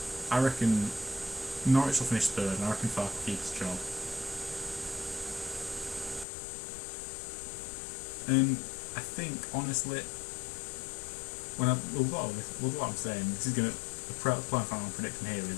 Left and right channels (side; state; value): right; drops out; at 6.2 s